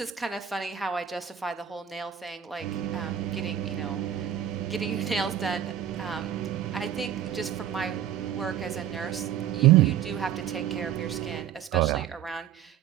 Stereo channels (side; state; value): left; quieter; 9.9 dB